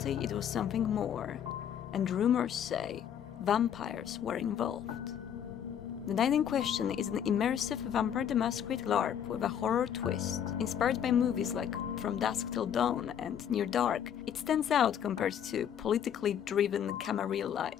it was something more, and rumors say vampires were involved. The Night in Question is an immersive Vampire the Masquerade LARP with a horror twist. Inspired by movies like From Dusk Till Dawn and Near Dark, it stands out compared to politically driven Camarilla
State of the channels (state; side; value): quieter; right; 9.0 dB